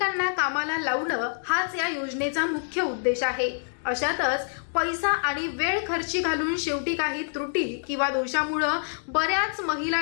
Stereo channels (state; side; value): silent; right; 61 dB below the other